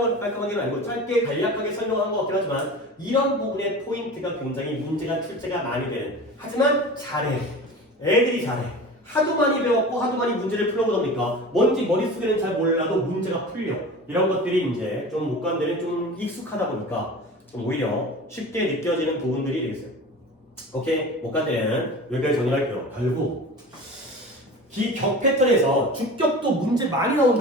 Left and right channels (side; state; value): both; normal; correlation 0.35